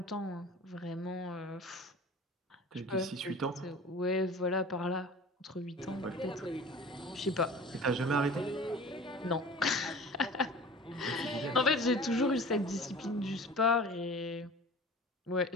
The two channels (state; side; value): normal; both; correlation 0.40